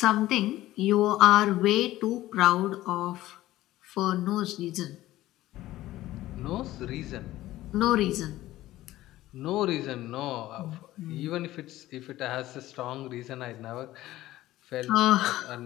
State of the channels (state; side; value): quieter; right; 15.7 dB